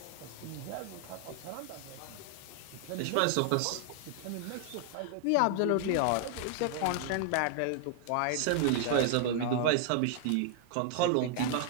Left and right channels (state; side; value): different; both; correlation 0.00